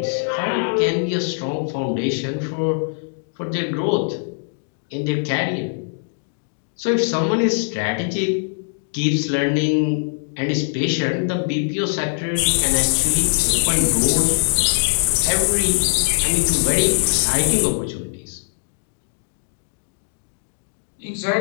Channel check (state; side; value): silent; right; digital silence